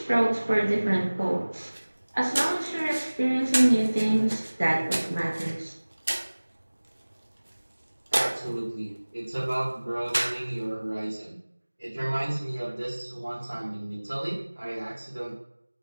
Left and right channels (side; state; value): both; inverted; correlation -1.00